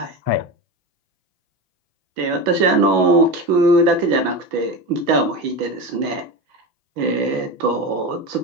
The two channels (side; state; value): left; late; 5.9 ms